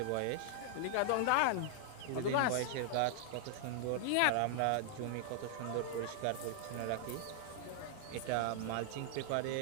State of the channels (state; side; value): different; both; correlation 0.00